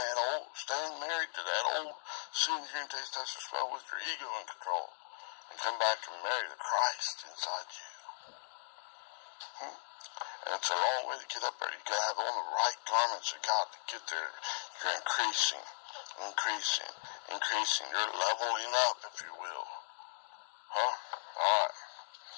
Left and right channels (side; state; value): right; silent; digital silence